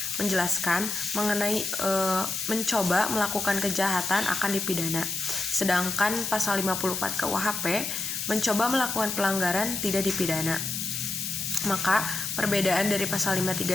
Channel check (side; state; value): left; noise; hiss, 4 dB below the sound